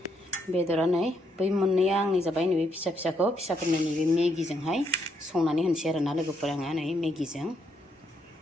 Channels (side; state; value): both; normal; correlation 0.75